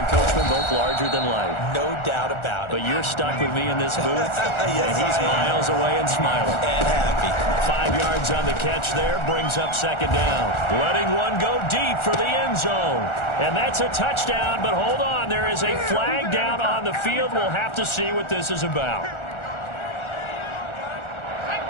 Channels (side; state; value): right; late; 1.4 ms